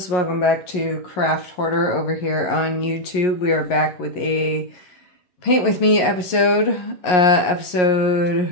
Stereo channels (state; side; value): late; right; 11 ms